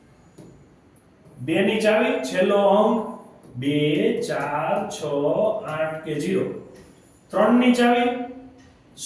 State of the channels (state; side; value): identical; both; correlation 1.00